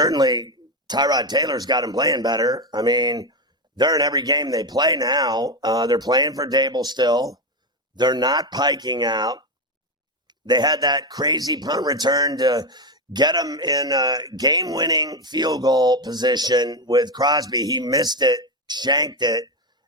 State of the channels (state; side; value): normal; both; correlation 0.12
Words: Tyrod Taylor's got them playing better. I mean, they're in every game they play now. They're playing for Dable still. They're not piking out. They had that crazy punt return to get them in a game-winning field goal position with Crosby. He missed it, shanked it,